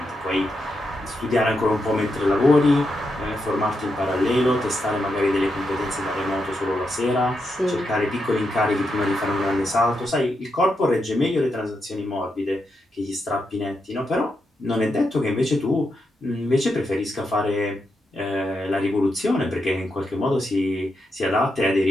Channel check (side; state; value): both; normal; correlation 0.84